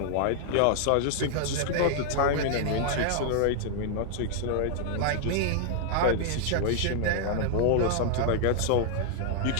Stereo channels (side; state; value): both; different; correlation -0.01